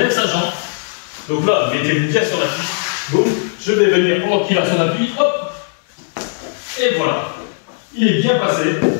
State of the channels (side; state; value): right; silent; digital silence